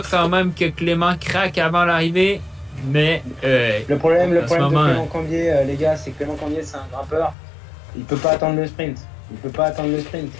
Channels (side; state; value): right; drops out; at 7.4 s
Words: quand même que Clément craque avant l'arrivée. Mais Le problème de moment, Clément Cambier, les gars, c'est que Clément Cambier, c'est un grimpeur. Il peut pas attendre le sprint.